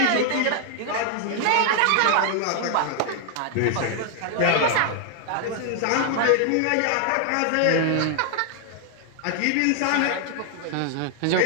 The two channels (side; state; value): both; different; correlation 0.00